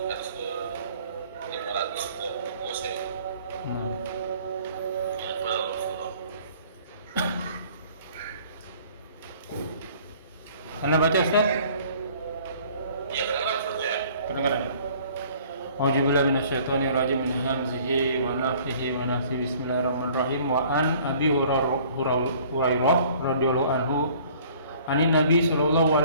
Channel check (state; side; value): inverted; both; correlation -0.53